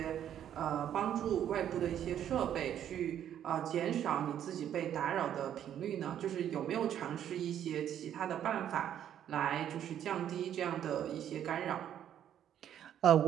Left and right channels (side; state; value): left; quieter; 10.2 dB